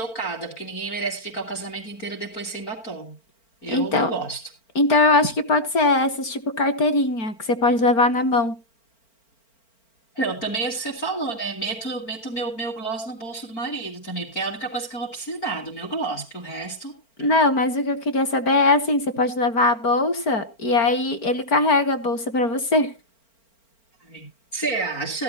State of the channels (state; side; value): late; right; 4.4 ms